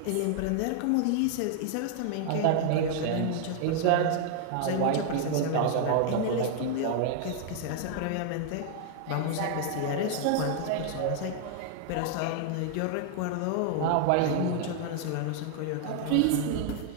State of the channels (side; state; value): both; different; correlation 0.00